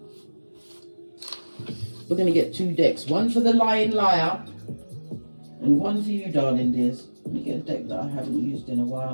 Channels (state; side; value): inverted; both; correlation -1.00